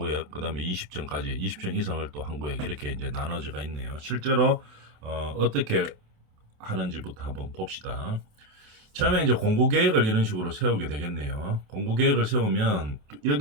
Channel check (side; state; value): left; late; 28 ms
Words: 그 다음에 20층까지 20층 이상을 또 한 구획 이렇게 이제 나눠져가 있네요. 실제로 어떻게 하는지부터 한번 봅시다. 처음에 이제 공구 계획을 이런 식으로 세우게 되겠네요. 공구 계획을 세우면